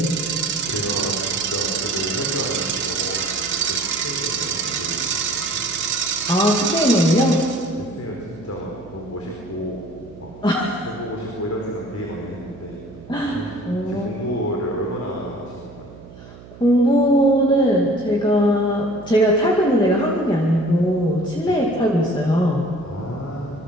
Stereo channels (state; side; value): noise; right; hum, 18 dB below the sound